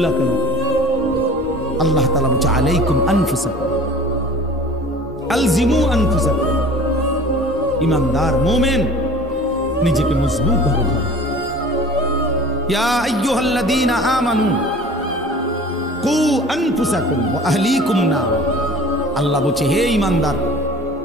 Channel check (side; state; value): both; normal; correlation 0.44